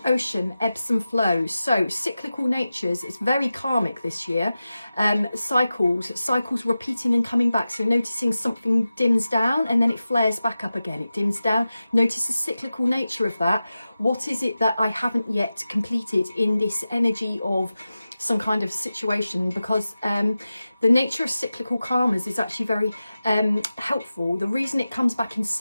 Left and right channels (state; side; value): inverted; both; correlation -0.94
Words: ocean, ebbs and flows. So cyclical natures. It's very karmic this year. Cycles repeating and coming back. So noticing something dims down and then it flares back up again. It dims down. Notice the cyclical nature of that. What is it that I haven't yet completed in this energy of some kind of situation, because the nature of cyclical karmas is actually very helpful. The reason it comes back in